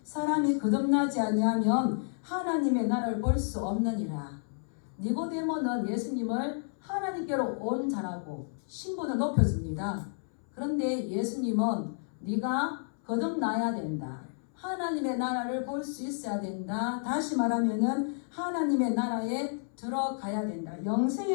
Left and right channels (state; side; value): silent; right; 57 dB below the other